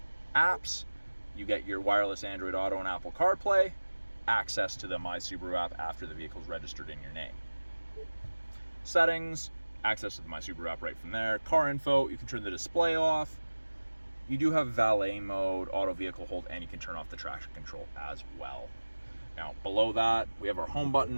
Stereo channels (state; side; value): inverted; both; correlation -1.00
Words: Apps, you get your wireless Android Auto and Apple CarPlay. Access to the My Subaru app after the vehicle's registered in your name. Settings, access to the My Subaru app right from there. Car info, you can turn the display off. You do have valet mode, auto vehicle hold, and you can turn off the traction control as well. Now, below that, we have our home